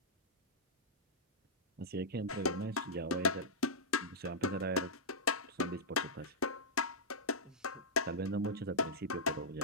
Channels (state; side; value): normal; both; correlation -0.12